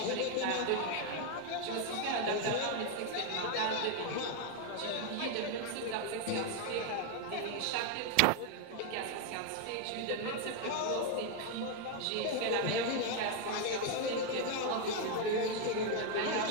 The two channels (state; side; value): different; both; correlation 0.01